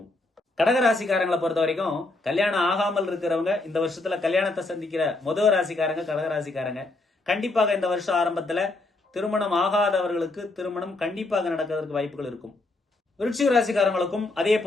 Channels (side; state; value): right; quieter; 3.1 dB